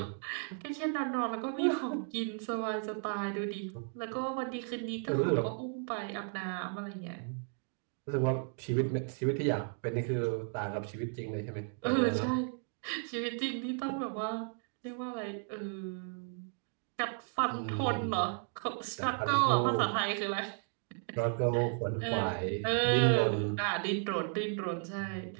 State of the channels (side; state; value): left; silent; 55 dB below the other